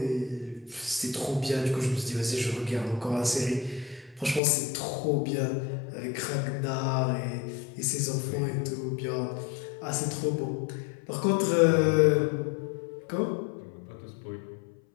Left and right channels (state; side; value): drops out; right; at 4.4 s